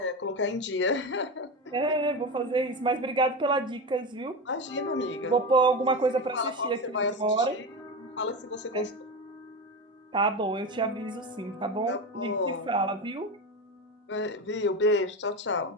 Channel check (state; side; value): normal; both; correlation 0.20